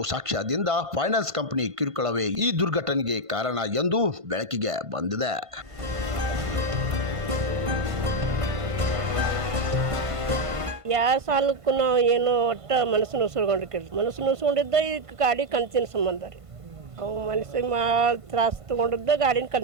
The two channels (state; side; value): late; left; 1.5 ms